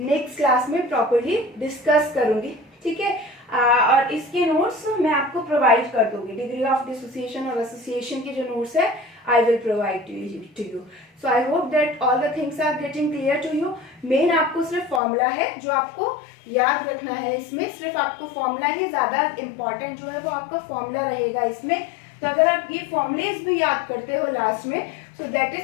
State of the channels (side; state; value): right; drops out; at 15.0 s